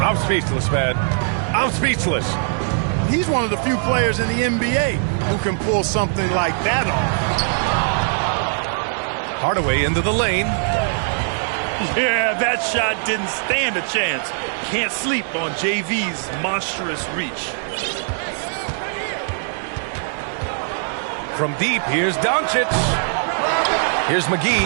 speechless, man. I'm speechless. He's one of the few players in the NBA who can pull something like that off. Hardaway into the lane. Yeah, that shot didn't stand a chance. Can't sleep on JV's monstrous reach. From deep, here's Doncic. Here's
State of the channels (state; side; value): silent; left; 65 dB below the other